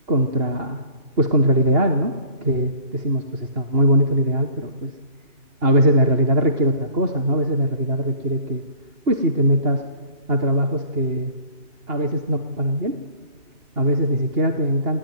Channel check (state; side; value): late; left; 2.8 ms